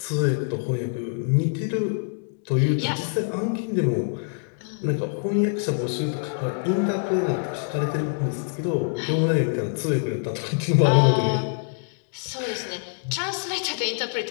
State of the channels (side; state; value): right; silent; digital silence